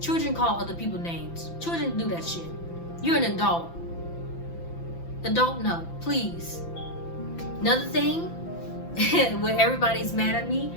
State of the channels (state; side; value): late; right; 5.9 ms